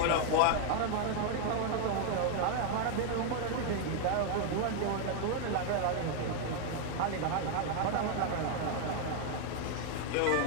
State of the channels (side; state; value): both; different; correlation 0.00